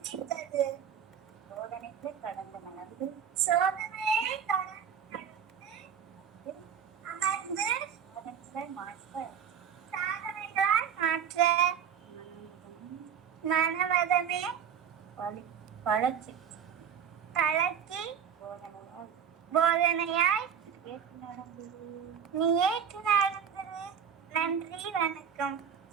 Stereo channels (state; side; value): quieter; left; 8.0 dB